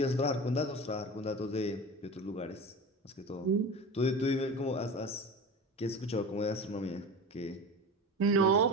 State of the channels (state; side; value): normal; both; correlation 0.30